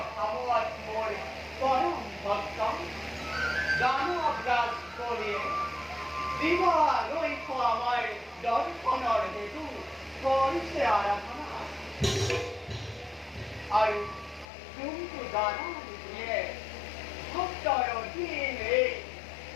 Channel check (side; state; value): right; drops out; at 14.5 s